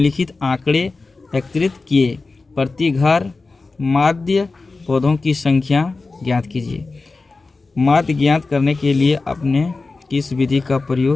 आंकड़े एकत्रित किए। प्रति घर माध्य पौधों की संख्या ज्ञात कीजिए। माध्य ज्ञात करने के लिए आपने किस विधि का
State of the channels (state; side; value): quieter; right; 3.8 dB